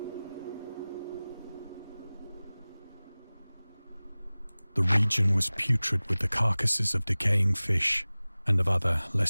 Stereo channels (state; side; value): inverted; both; correlation -0.99